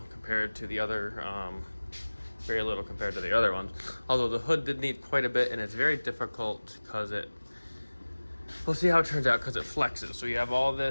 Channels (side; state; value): both; inverted; correlation -1.00